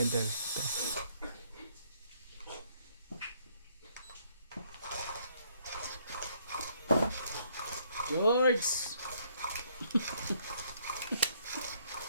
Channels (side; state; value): both; inverted; correlation -0.67